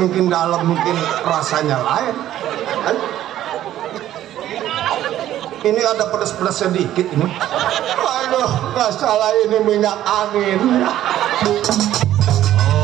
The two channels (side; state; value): left; quieter; 12.6 dB